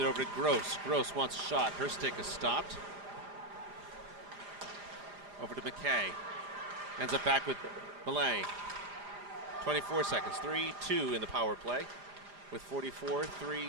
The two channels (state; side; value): late; left; 4.9 ms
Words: over to Gross. Gross wants a shot. Her stick is stopped. Over to McKay. Ends up back with Millay. 24 seconds. 3-2 in the power play with